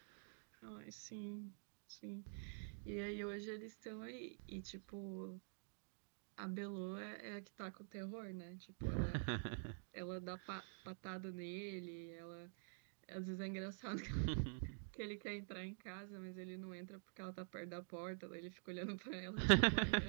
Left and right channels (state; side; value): silent; left; digital silence